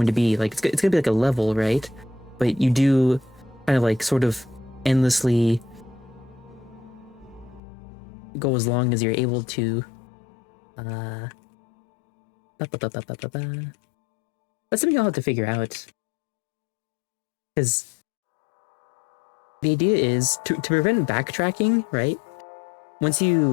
to be. Like, it's gonna be like a level, right? But you do kind of like sort of endlessly go as long as you're able to. That's something I'll have to figure out. Because the idea is to prevent backtracking, right? Once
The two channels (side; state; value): right; drops out; at 7.6 s